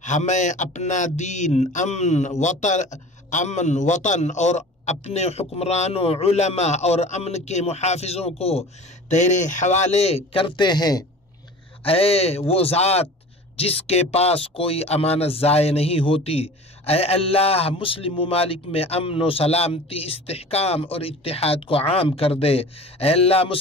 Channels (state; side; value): normal; both; correlation 0.39